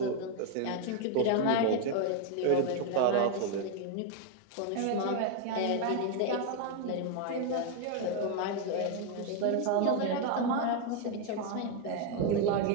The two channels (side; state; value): both; different; correlation 0.01